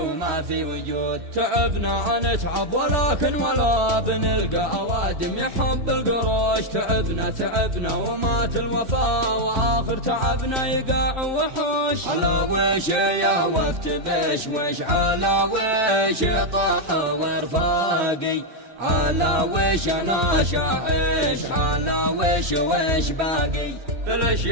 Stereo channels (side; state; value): left; late; 3.1 ms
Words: في وجود. تعبنا نتعب ولكن ولا بنلقى أوادم يحب القروش. تعبنا ومات الوفا، وآخر تعبنا يقاع وحوش. على وش يا وقت بشوش، على وش طاح ورفاقي، على وش انا شاعش، على وش باقي. ليش